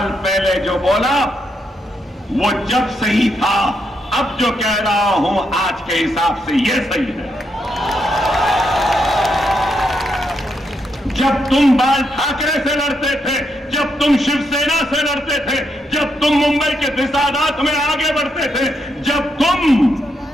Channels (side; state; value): both; normal; correlation 0.80